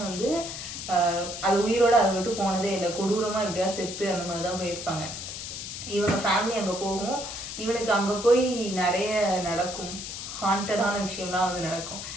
வந்து அது உயிரோட அதை விட்டு போனதே இல்லை. கொடூரமா எப்படியா செத்து அந்த மாதிரிதான் போயிருப்பாங்க. இவங்க ஃபேமிலி அங்க போகும். இவனுக்கு அங்க போய் நிறைய நடக்கும், ஹாண்டடான விஷயம்லாம் வந்து நடக்கும்.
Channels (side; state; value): left; noise; hiss, 8 dB below the sound